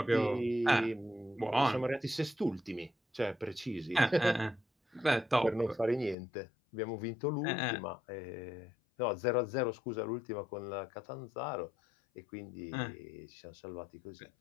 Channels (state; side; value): drops out; right; at 6.2 s